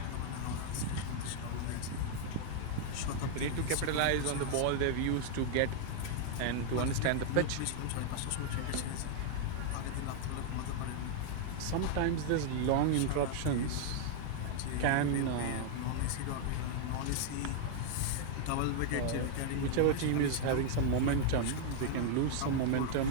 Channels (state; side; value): different; both; correlation 0.00